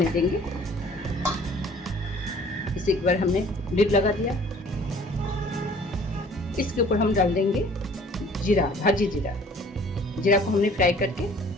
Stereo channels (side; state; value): both; normal; correlation 0.52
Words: देंगे। इसे एक बार हमने लिड लगा दिया। इसके ऊपर हम डाल देंगे जीरा, भाजी जीरा। जीरा को हमने फ्राई करके